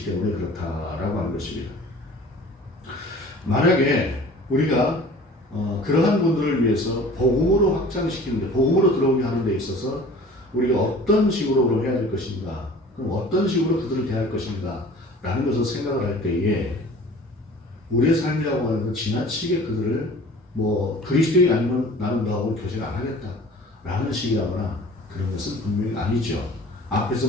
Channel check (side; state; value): both; normal; correlation 0.45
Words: 때문에 그렇다라고 하는 것입니다. 만약에 우리가 그러한 분들을 위해서 복음으로 확장시키는데 복음으로 들어오게 하는 데 있어서 우리가 어떤 식으로 그럼 해야 될 것인가 그럼 어떤 식으로 그들을 대할 것인가 라는 것을 생각을 할 때에 우리의 삶이라고 하는 건 지나치게 그들을 그리스도인이 아니면 나는 너하고 교제를 안 하겠다 라는 식이라거나 그런 것은 분명히 아니죠.